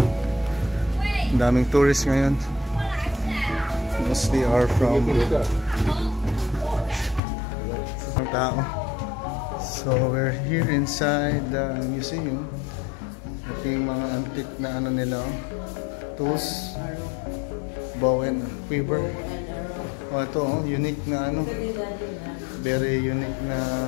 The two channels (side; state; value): right; drops out; at 7.2 s